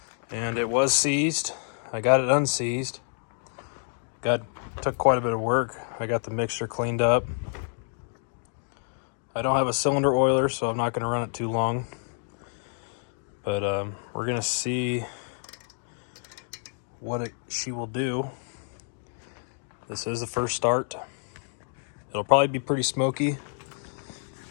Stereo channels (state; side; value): silent; right; 59 dB below the other